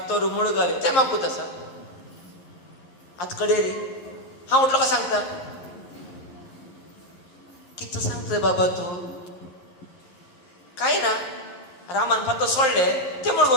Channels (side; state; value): right; late; 11 ms